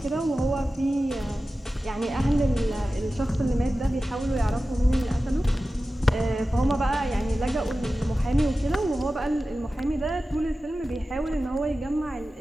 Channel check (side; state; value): both; normal; correlation 0.94